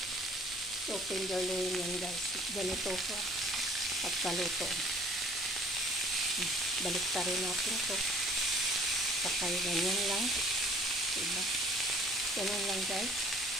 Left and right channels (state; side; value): normal; both; correlation 0.54